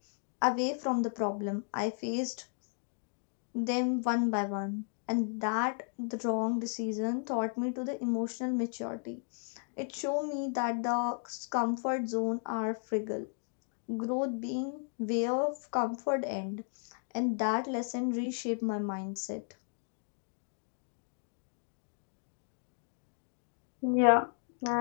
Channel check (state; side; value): silent; right; 55 dB below the other